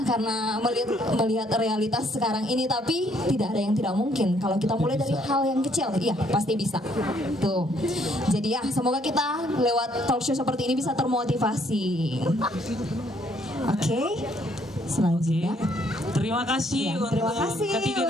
karena melihat realitas sekarang ini, tapi tidak ada yang tidak mungkin kalau kita mulai dari hal yang kecil. Iya, pasti bisa. Tuh. Jadi ya, semoga kita lewat talk show seperti ini bisa termotivasi. Oke. Selanjutnya. Terima kasih untuk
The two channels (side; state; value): both; normal; correlation 0.67